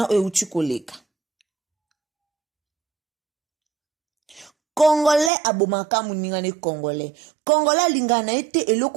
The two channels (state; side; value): drops out; left; at 5.3 s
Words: euti koleka. Congolais abomaka muningane Congolais. Congolais lingana ete